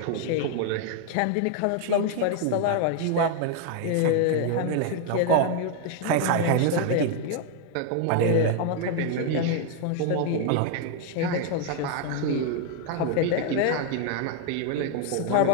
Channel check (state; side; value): different; both; correlation 0.00